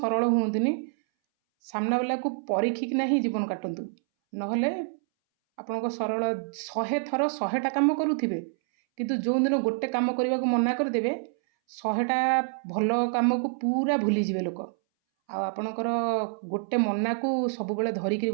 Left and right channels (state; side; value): silent; left; 60 dB below the other